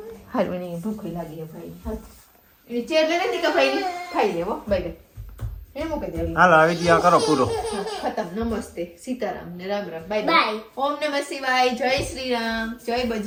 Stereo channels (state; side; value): identical; both; correlation 1.00